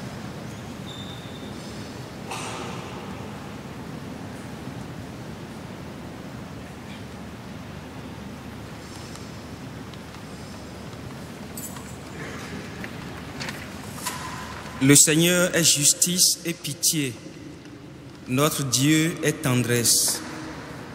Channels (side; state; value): both; identical; correlation 1.00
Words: Le Seigneur est justice et pitié. Notre Dieu est tendresse.